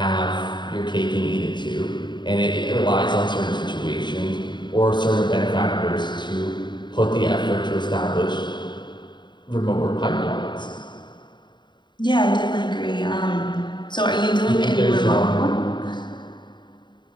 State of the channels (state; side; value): late; right; 0.22 ms